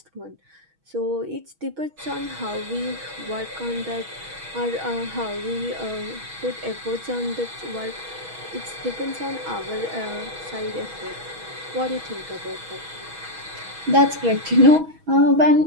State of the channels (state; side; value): late; left; 6.2 ms